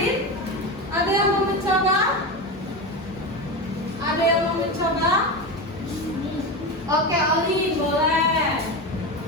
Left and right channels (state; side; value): normal; both; correlation 0.20